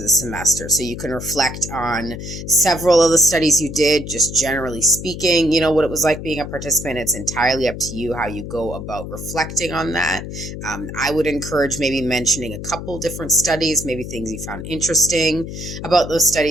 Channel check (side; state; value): left; noise; hum, 9 dB below the sound